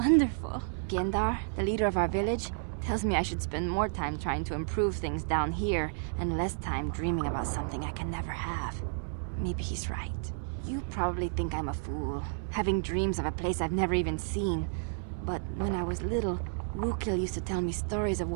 Gendar, the leader of our village, tells me I should spend more time trying to improve things down here and less time dreaming about something I can never have. Maybe he's right. You probably think I'm a fool, having dreams of a place I've never even seen. But when I was little, Rukil used to tell me stories of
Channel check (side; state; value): left; silent; digital silence